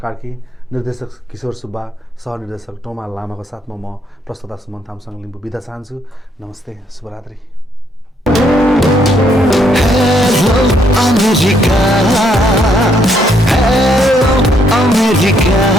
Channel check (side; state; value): both; normal; correlation 0.71